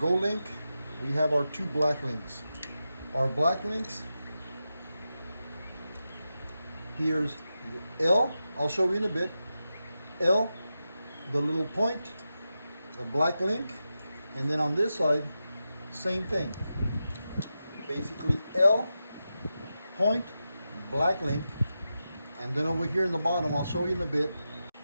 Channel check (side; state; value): both; inverted; correlation -0.90